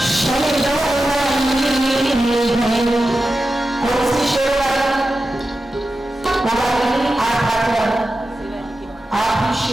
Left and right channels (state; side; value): normal; both; correlation 0.92